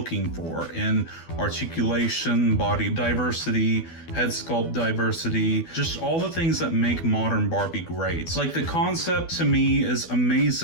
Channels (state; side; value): late; right; 12 ms